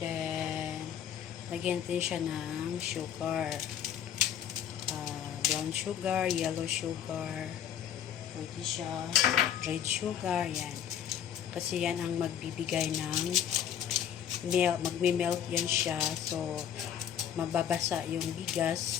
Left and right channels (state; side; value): quieter; right; 9.4 dB